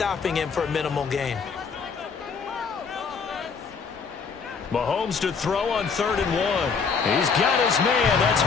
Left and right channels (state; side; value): quieter; right; 5.6 dB